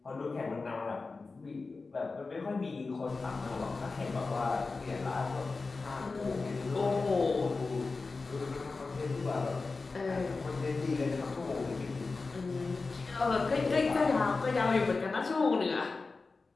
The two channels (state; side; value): quieter; right; 4.0 dB